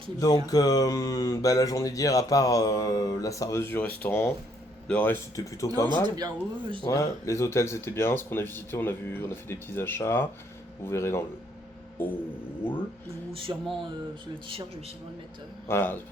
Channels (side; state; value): both; normal; correlation 0.68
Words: Donc la journée d'hier, à part la serveuse du restaurant, le reste c'était plutôt pas mal. C'était bien, ouais, bien. Les hôtels c'était bien, ce qu'on a visité, on a fait des petits achats. Vous verrez dans le hall. Ou sûrement le t-shirt, je vais sûrement le mettre. Voilà,